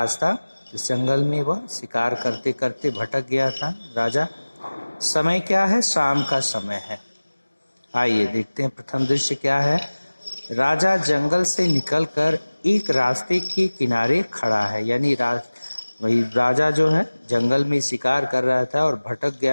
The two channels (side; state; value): both; inverted; correlation -1.00